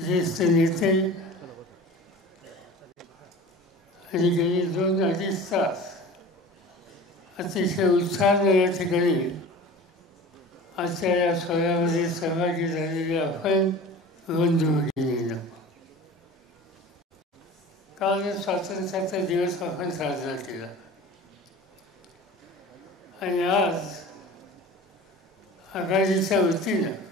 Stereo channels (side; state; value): both; normal; correlation 0.38